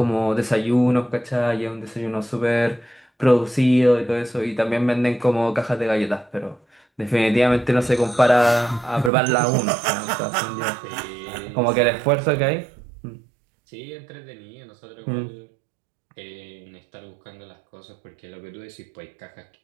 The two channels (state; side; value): drops out; left; at 9.1 s